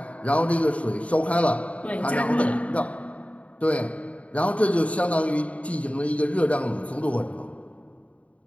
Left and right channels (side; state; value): right; late; 0.066 ms